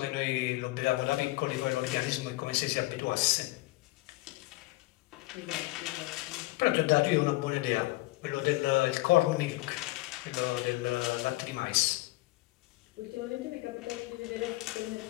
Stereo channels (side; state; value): right; quieter; 20.6 dB